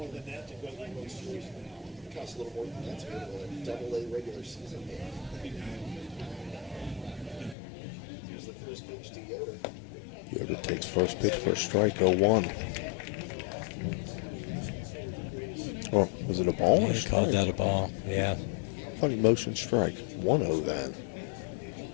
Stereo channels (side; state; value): right; drops out; at 7.6 s